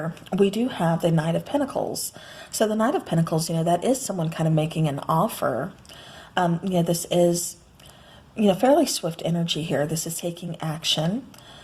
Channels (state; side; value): identical; both; correlation 1.00